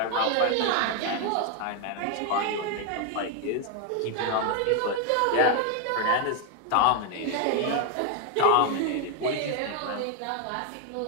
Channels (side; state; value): both; different; correlation 0.00